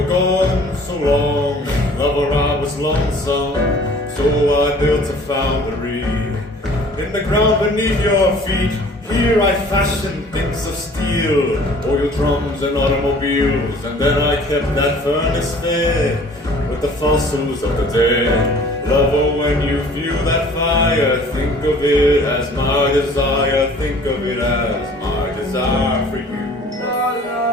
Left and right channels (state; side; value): normal; both; correlation 0.51